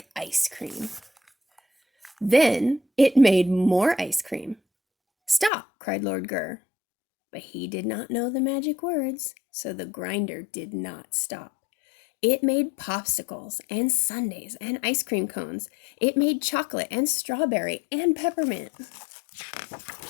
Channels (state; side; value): drops out; right; at 5.5 s